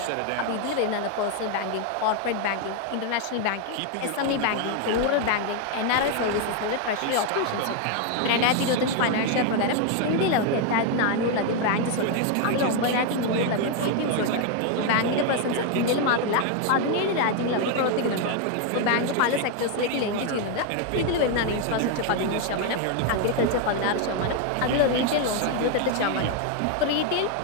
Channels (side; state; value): both; different; correlation 0.01